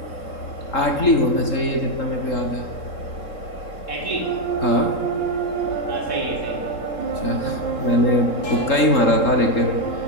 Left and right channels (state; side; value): late; right; 3.8 ms